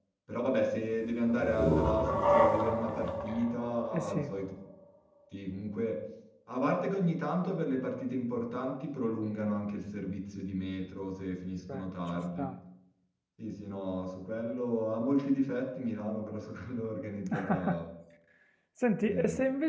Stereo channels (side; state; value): both; identical; correlation 1.00